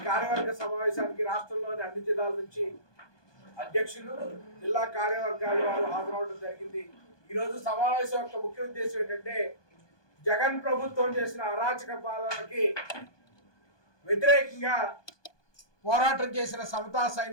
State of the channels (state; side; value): late; right; 1.2 ms